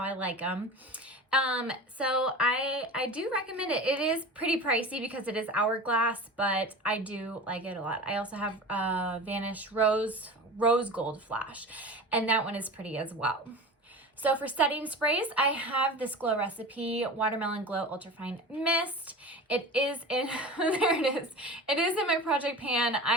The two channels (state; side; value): normal; both; correlation 0.33